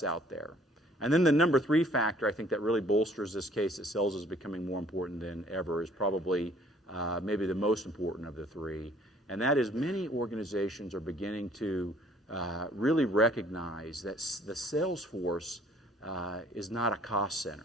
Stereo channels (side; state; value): both; normal; correlation 0.58